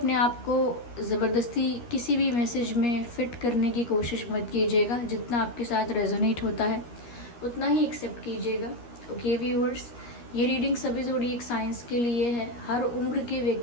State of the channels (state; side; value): late; right; 13 ms